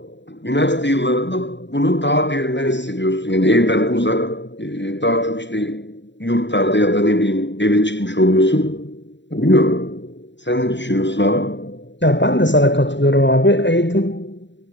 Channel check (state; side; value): late; right; 0.52 ms